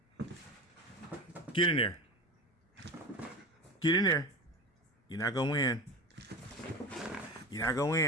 in there. Get in there. You're not gonna win. You're not gonna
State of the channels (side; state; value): both; normal; correlation 0.28